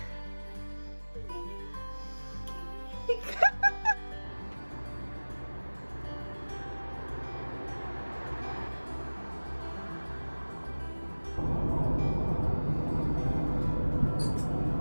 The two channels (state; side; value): inverted; both; correlation -1.00